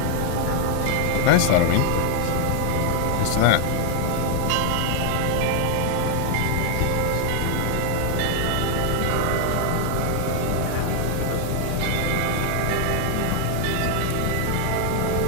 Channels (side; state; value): both; different; correlation 0.00